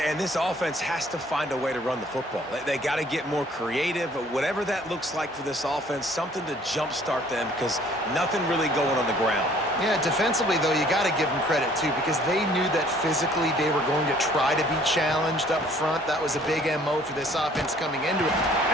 and this offense has to find a way to run the football. They got to get more creative, whatever that looks like for this offense, something to jumpstart them because nothing really going on the ground. Yeah, defensively, though, you got to give them credit, too, because they knew that physically they were going to try to be challenged up front. That was a big MO for this offense coming into it.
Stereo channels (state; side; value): normal; both; correlation 0.57